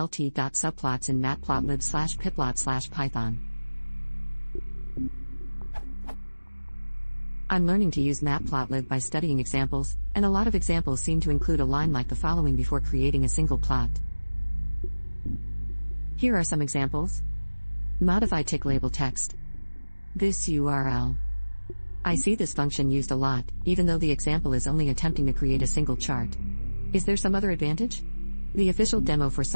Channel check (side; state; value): both; inverted; correlation -1.00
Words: in Matplotlib/Pyplot/Python? I'm learning to use Matplotlib by studying examples, and a lot of examples seem to include a line like the following before creating a single plot. Here are some examples. Modify tick label text. This URL. I see this function used a lot, even though the example is only attempting to create a single chart. Is there some other advantage? The official demo for